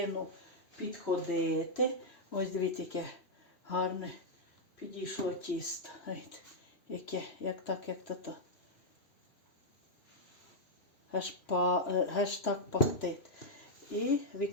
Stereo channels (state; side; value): late; right; 2.8 ms